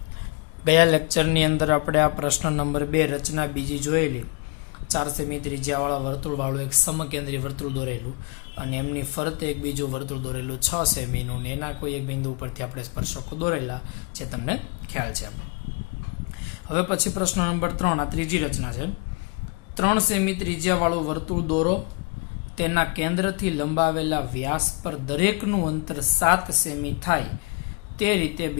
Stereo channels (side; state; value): right; quieter; 31.4 dB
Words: गया लेक्चरनी अंदर આપણે આ પ્રશ્ન નંબર 2 રચના બીજી જોયેલી 4 સેમી ત્રિજ્યાવાળા વર્તુળવાળું એક સમકેન્દ્રી વર્તુળ દોરેલું અને એમની ફરતે એક બીજું વર્તુળ દોરેલું 6 સેમીનું ને એના કોઈ એક બિંદુ ઉપરથી આપણે સ્પર્શકો દોરેલા જે તમને ખ્યાલ છે. હવે પછી પ્રશ્ન નંબર 3 આ ત્રીજી રચના છે. 3 સેમી ત્રિજ્યાવાળું વર્તુળ દોરો, તેના કેન્દ્રથી લંબાવેલા વ્યાસ પર દરેકનું અંતર 7 સેમી થાય તે રીતે